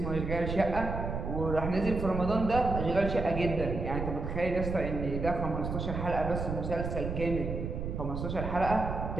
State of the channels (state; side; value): noise; right; rumble, 4 dB below the sound